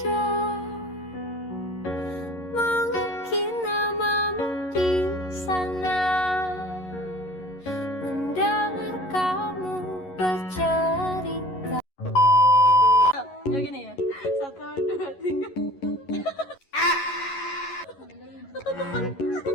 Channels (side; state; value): right; late; 11 ms